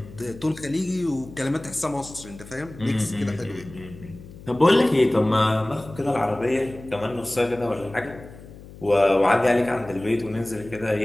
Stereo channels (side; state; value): left; noise; hum, 18 dB below the sound